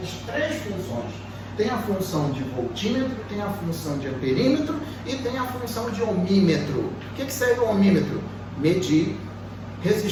três funções. Tem a função de voltímetro, tem a função de amperímetro e tem a função de ohmímetro. O que serve o ohmímetro? Medir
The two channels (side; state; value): both; identical; correlation 1.00